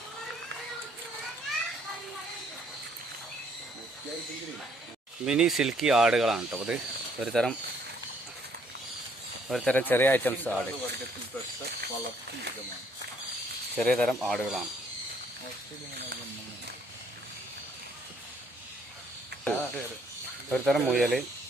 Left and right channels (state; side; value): normal; both; correlation 0.65